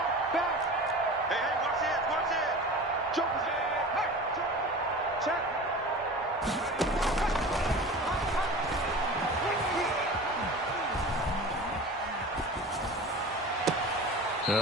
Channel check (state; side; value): normal; both; correlation 0.35